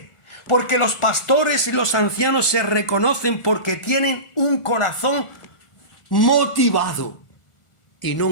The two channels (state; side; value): late; right; 1.4 ms